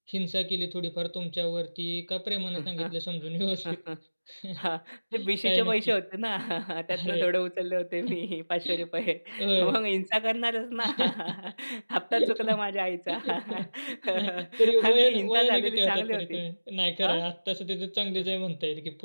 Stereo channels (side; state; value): both; inverted; correlation -1.00